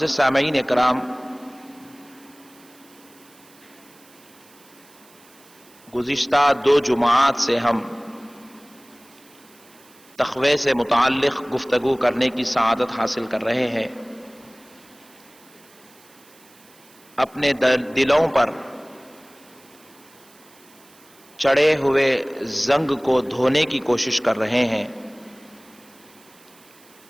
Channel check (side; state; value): right; noise; hiss, 26 dB below the sound